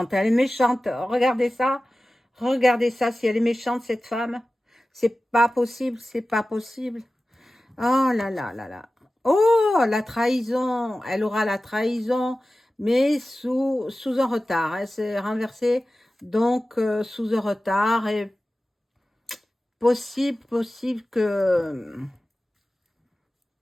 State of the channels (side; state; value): both; normal; correlation 0.95